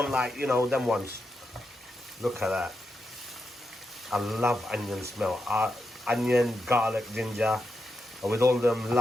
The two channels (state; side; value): normal; both; correlation 0.86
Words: like, you know, them ones. Look at that. I love onion smell. Onion, garlic, ginger, and with all them